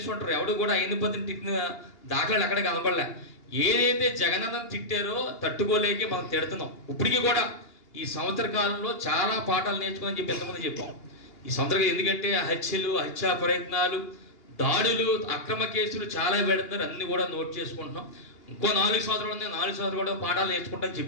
ఎవడు కూడా అయ్యన్న పాత్రుడు తిట్టిన దాఖలాలు ఎక్కడ కనపడలే. ఏదైతే జగనన్న తిట్టారో తట్టుకోలేక మనం తిడుతున్నాం. ఇప్పటికీ కూడా ఈ సంవత్సర కాలంలో చాలా పాఠాలు నేర్చుకోని చెప్పి ఎంతమంది చెప్పాం. ఈ సంవత్సరం ఎందుకంటే హత్యలు, హత్యా ప్రయత్నాలు, దాడులు, అక్రమ కేసులు చాలా పెడుతున్నారు. అన్ని కూడా నోట్ చేసుకుంటున్నాం. ఇంకో 4 సంవత్సరాలు ఉన్నాయి. 4 సంవత్సరాలు కూడా పాఠాలు నేర్చుకుంటాం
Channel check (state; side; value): late; right; 2.8 ms